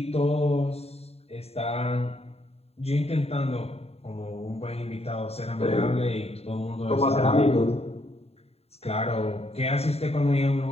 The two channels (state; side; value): late; right; 0.30 ms